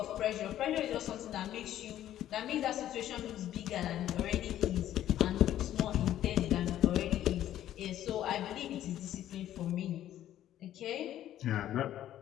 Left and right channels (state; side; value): quieter; right; 12.2 dB